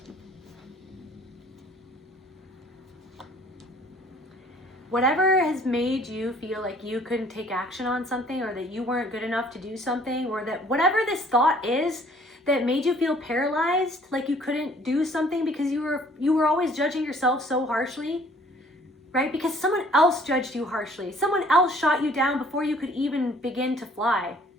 whatever has made you feel like you couldn't take action on something, or that you weren't good enough to do something, or that whatever this thought is that made you feel paralyzed, like you couldn't do something because you were always judging yourself so harshly, right? Because someone else judged you harshly. Someone else shot you down before you could even begin to fly.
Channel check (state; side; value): normal; both; correlation 0.57